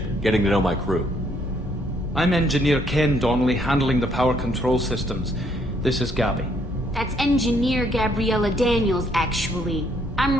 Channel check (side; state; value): both; normal; correlation 0.68